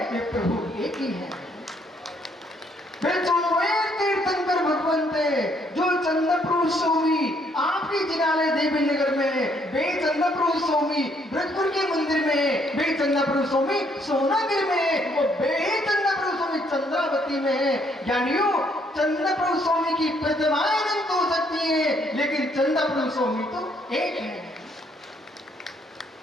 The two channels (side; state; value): both; normal; correlation 0.69